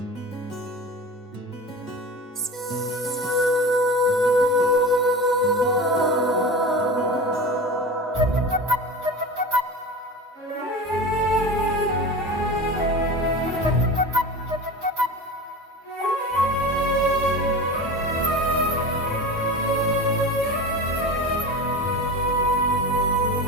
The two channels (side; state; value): both; normal; correlation 0.31